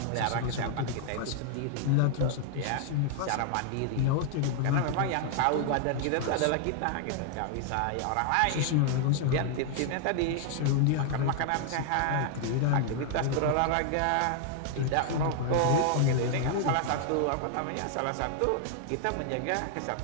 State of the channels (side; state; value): both; different; correlation 0.00